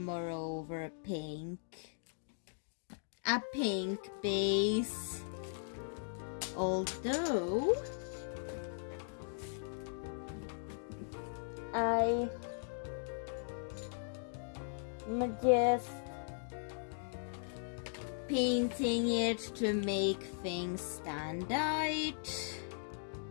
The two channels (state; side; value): silent; right; digital silence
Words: over pink. A pink base. Although I'm just painting it to make things stand out,